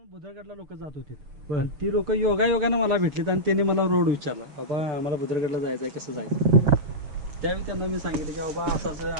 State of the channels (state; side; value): late; left; 6.7 ms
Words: बुधरगडला लोक जात होती आणि ती लोक योगायोगानं मला भेटलीत आणि त्यांनी मला रोड विचारला, बाबा आम्हाला बुधरगडला जायचंय, कसं जायचं. त्यावेळी त्यांना मी सांगितलं की बाबा असं